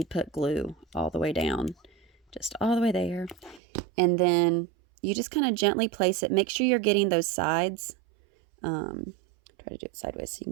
put glue all the way down, just all the way there. And then you just kind of gently place it. Make sure you're getting those sides. Try to do it sideways so you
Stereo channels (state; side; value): drops out; left; at 3.6 s